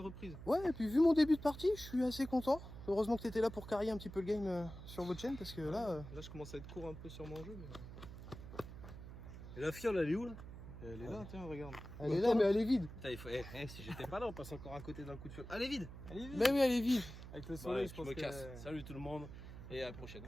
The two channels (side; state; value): right; noise; hum, 12 dB below the sound